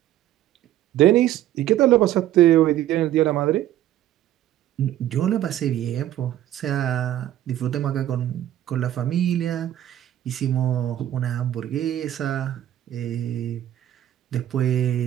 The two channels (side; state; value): left; quieter; 12.5 dB